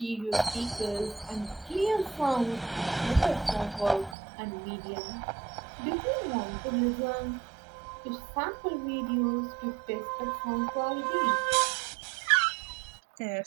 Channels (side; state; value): left; drops out; at 4.2 s